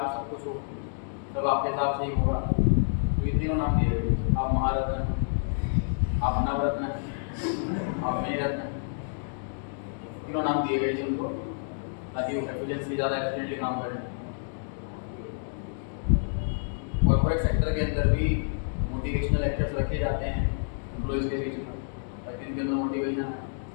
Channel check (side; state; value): right; silent; digital silence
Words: सब कुछ हो, तब आपके हिसाब से ही होगा। तो ये तीनों नाम दिए गए, आप महारत्न, आप नवरत्न, आप मणिरत्न, तीनों नाम दिए गए सबको, ताकि एफिशिएंसी ज़्यादा एफिशिएंटली काम करें। कॉर्पोरेट सेक्टर के अंदर भी मोटिवेशनल लेक्चर्स रखे जाते हैं एम्प्लॉयज़ के बीच में, ताकि इनके अंदर मोटिवेशन है।